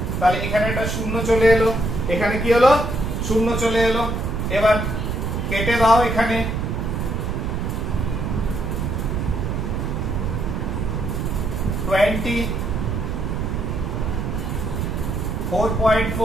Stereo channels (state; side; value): noise; right; rumble, 2 dB below the sound